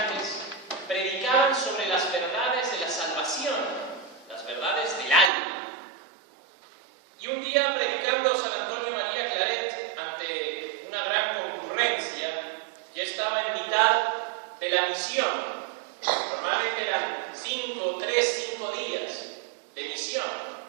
predicaban sobre las verdades de la salvación, las verdades del alma. Y un día, predicando San Antonio María Claret ante una gran concurrencia, ya estaba en mitad de la misión. Normalmente eran 5 días de misión.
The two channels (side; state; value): left; drops out; at 5.3 s